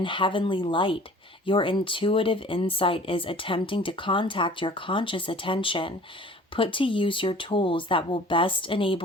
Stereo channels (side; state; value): both; normal; correlation 0.48